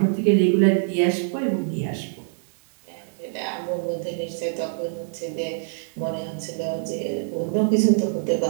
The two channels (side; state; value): left; silent; 62 dB below the other